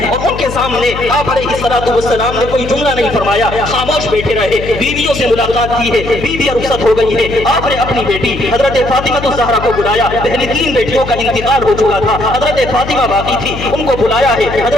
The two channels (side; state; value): left; noise; hum, 9 dB below the sound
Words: اور ان کے سامنے آپ علیہ السلام نے کوئی جملہ نہیں فرمایا، خاموش خاموش بیٹھے رہے، بیویوں سے ملاقات کی ہے، بیویاں رخصت ہو گئی ہے، آپ نے اپنی بیٹی حضرت فاطمہ الزہرا کو بلایا، پہلی 3 بیٹیوں کا انتقال ہو چکا تھا، حضرت فاطمہ باقی تھی، ان کو بلایا ہے،